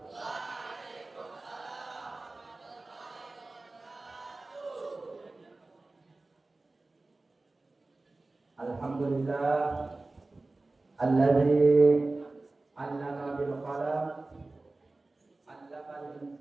Alhamdulillah alladzi 'allama bil qalam 'allama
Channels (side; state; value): left; quieter; 3.2 dB